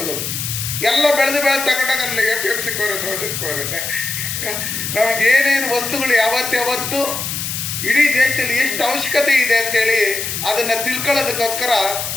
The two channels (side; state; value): left; noise; hiss, 4 dB below the sound